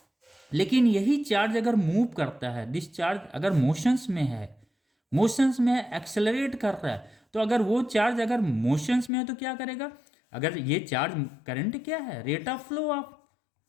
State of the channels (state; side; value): drops out; right; at 9.1 s